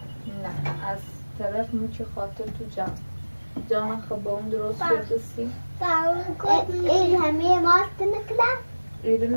نه از طرف میچه خاطر تو جان خب اون درست بزسی این همه ماست نکلا ایره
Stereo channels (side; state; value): both; inverted; correlation -1.00